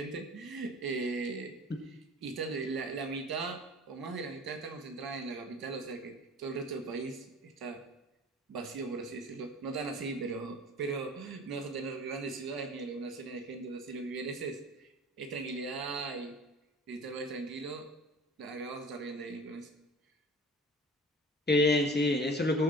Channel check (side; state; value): both; normal; correlation 0.42